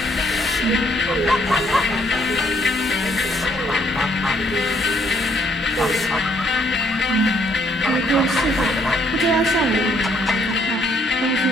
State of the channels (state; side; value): normal; both; correlation 0.68